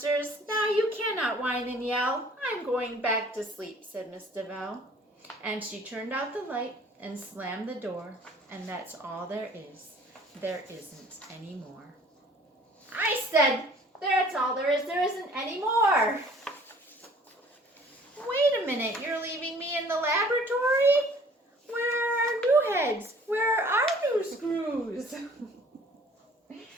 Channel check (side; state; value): both; normal; correlation 0.53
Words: Now you cannot whine and yell. I'm going back to sleep," said Miss DeVal. And she turned out the light and slammed the door, and that's all there is. There isn't any more. I said, that's all there is. There isn't any more. Wait a minute, you're leaving me in the laboratory? Where are our new heads? Where are our new screws?